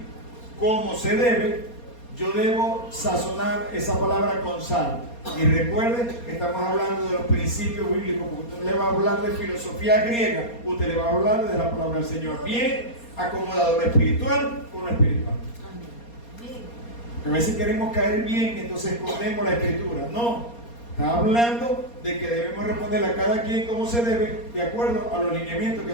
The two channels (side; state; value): right; late; 4.3 ms